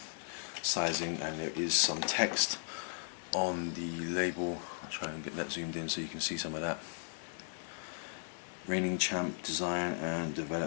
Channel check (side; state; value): right; silent; 53 dB below the other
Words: sizing, and there is some text on the label. I'll try and get that zoomed in so you can see some of that. Reigning Champ design and